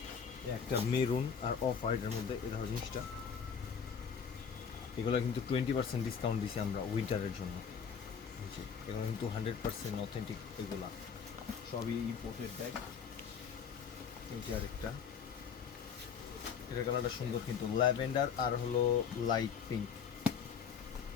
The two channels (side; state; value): right; quieter; 6.8 dB